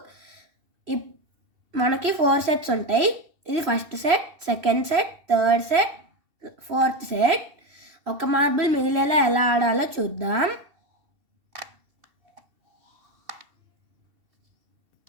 మనకి 4 సెట్స్ ఉంటాయి. ఇది first set, second set, third set, fourth set. ఒక మార్బుల్ మిగిలేలా ఎలా ఆడాలో చూద్దాం.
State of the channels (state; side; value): late; left; 2.7 ms